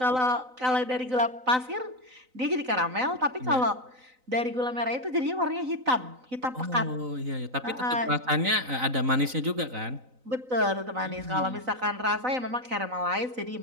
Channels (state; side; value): late; left; 3.9 ms